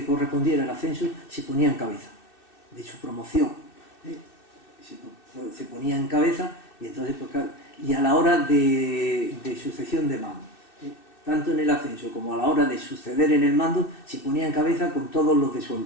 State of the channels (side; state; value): right; late; 2.6 ms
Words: correspondiera el ascenso se ponía en cabeza de su promoción. Se ponía en cabeza y entonces pues, claro, y a la hora de sucesión de mando, tanto en el ascenso como a la hora de suceder en el mando, se ponía en cabeza con todos los de su